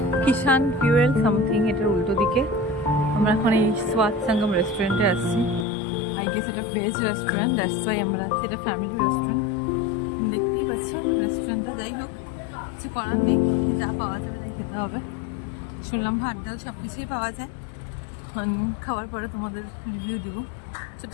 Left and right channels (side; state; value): right; drops out; at 5.7 s